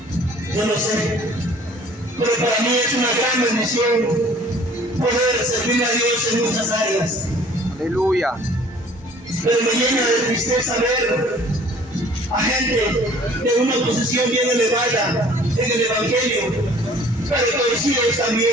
Yo no sé, pero para mí es una gran bendición poder servir a Dios en muchas áreas. Aleluya. Pero me llena de tristeza ver a gente de una posición bien elevada en el Evangelio, pero torcidos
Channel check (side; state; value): both; normal; correlation 0.52